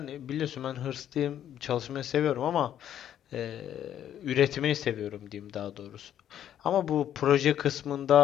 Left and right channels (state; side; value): quieter; right; 10.5 dB